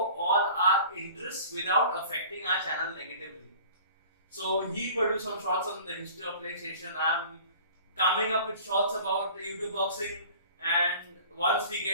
all our interests without affecting our channel negatively. So he produced some shorts on the history of PlayStation. I'm coming up with shorts about YouTube boxing, and once we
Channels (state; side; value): inverted; both; correlation -0.45